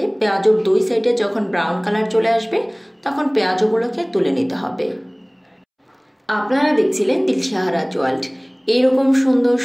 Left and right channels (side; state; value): both; identical; correlation 1.00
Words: পেঁয়াজুর 2 সাইডে যখন ব্রাউন কালার চলে আসবে তখন পেঁয়াজুগুলোকে তুলে নিতে হবে। আপনারা দেখছিলেন দিলশাহারাজ ওয়ার্ল্ড। এইরকম সুন্দর,